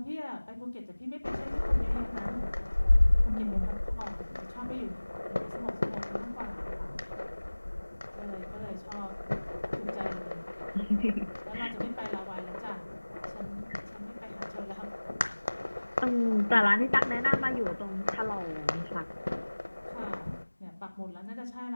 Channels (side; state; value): both; inverted; correlation -1.00